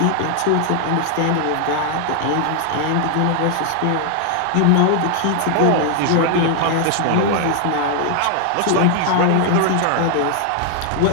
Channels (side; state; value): both; different; correlation 0.00